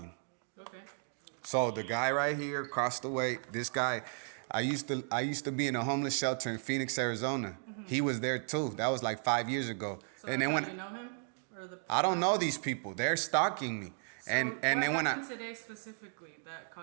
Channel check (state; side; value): silent; left; 55 dB below the other